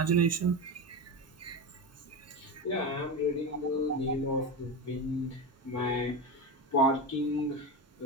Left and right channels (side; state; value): both; normal; correlation 0.19